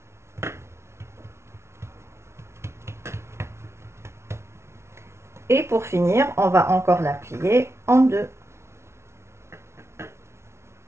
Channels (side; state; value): left; late; 0.13 ms